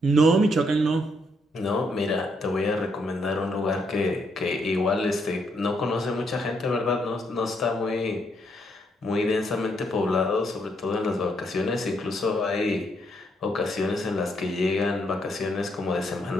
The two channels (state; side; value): normal; both; correlation 0.75